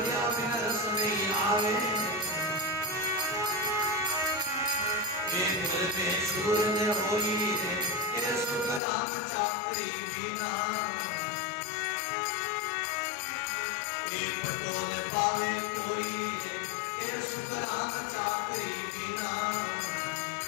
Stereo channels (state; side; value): drops out; right; at 8.8 s